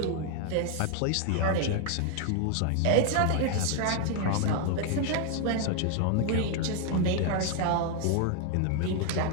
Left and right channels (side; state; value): both; different; correlation 0.00